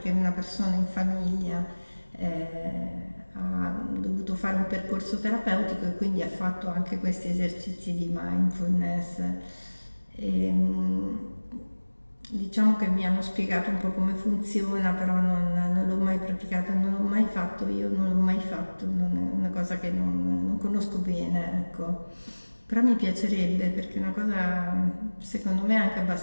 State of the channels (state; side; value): inverted; both; correlation -1.00